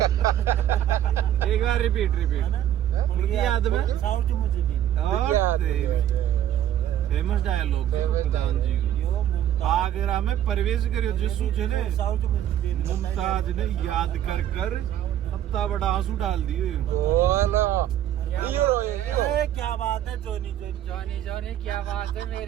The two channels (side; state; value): left; quieter; 11.3 dB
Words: एक बार रिपीट उनकी याद में सारा जो मुझे नहीं और फेमस डायलॉग प्रधान जी यो आगरा में प्रवेश करियो जिसू ने सारा जो मुझे मुमताज ने याद कर कर इतना बड़ा आंसू डाल दिए बोलो ए क्या बात है जोनी जोनी जॉनी क्या बात है